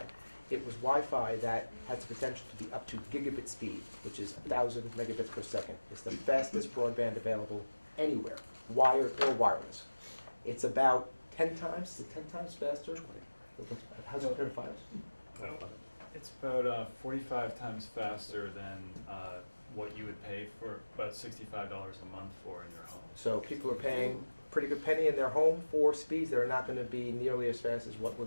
it was Wi-Fi that has the potential to be up to gigabit speed, which is 1,000 megabits per second. It's the fastest broadband available anywhere, wired or wireless. It's about 10 times, is it 10 times faster? How's it compared to Fios? It's about 45 times faster than what you would pay for about $65 a month for in your home. So people are paying a pretty good penny in their home for speeds that are not going to be nearly as fast as what we're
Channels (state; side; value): inverted; both; correlation -1.00